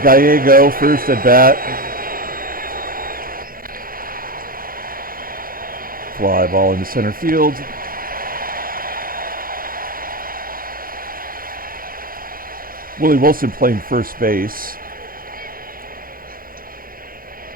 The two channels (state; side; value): late; left; 0.42 ms